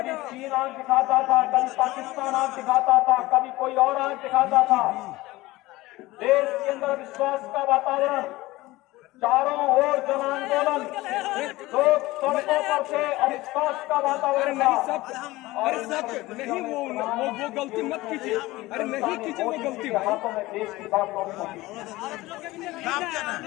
चीन आंख दिखाता था, कभी पाकिस्तान आंख दिखाता था, कभी कोई और आंख दिखाता था। देश के अंदर विश्वास का वातावरण, चारों ओर जन आंदोलन, लोग सड़कों पर से अविश्वास का वातावरण था। अरे सब नहीं, वो गलती मत कीजिए, अरे नहीं कीजिए, वो गलती हाथों में देश की बात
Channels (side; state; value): right; quieter; 19.1 dB